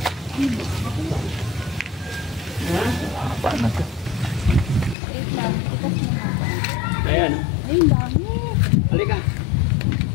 Ayan. Ay, dami. Halika.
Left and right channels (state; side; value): drops out; right; at 5.0 s